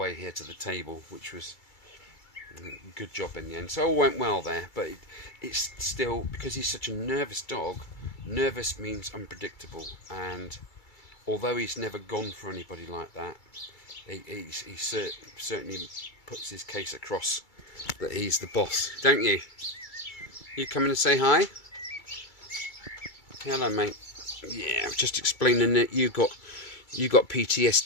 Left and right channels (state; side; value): late; right; 2.3 ms